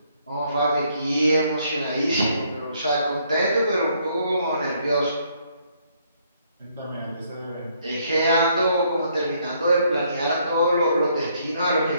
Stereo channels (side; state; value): both; inverted; correlation -0.69